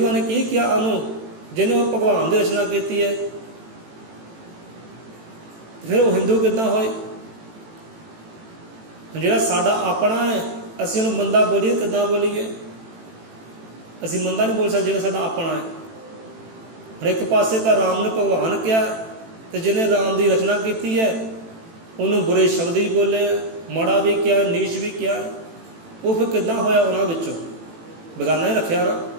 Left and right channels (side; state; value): left; late; 18 ms